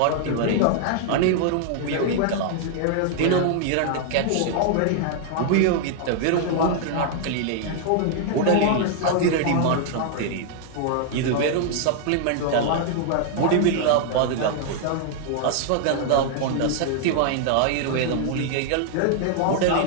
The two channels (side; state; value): both; different; correlation 0.00